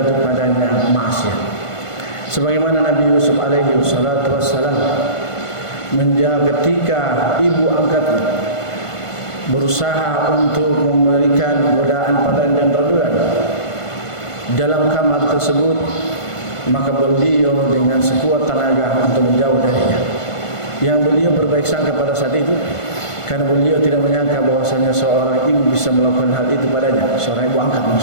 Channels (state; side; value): late; right; 1.5 ms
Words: padanya maksiat. Sebagaimana Nabi Yusuf alaihi wassalatu wassalam ketika ibu angkatnya berusaha untuk memberikan godaan padanya dan raduan dalam kamar tersebut, maka beliau dengan sekuat tenaga untuk menjauh darinya. Yang beliau berbaik sangka pada saat itu, karena beliau tidak menyangka bahwasanya seorang ibu bisa melakukan hal itu padanya, seorang ibu angkat